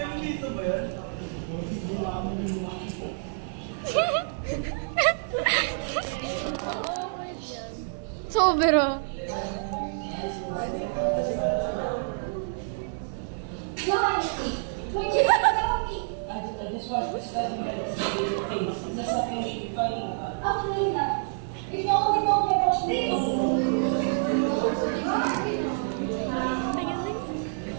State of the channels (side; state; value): left; silent; digital silence